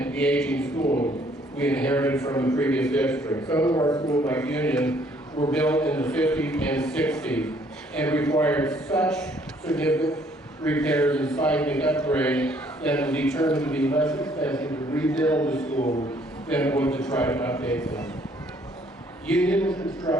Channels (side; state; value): both; normal; correlation 0.63